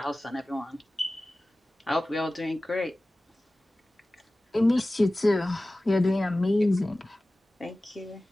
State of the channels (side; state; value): both; normal; correlation 0.97